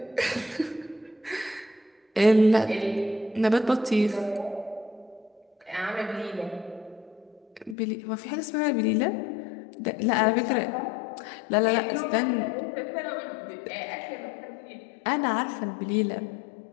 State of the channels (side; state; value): right; drops out; at 7.8 s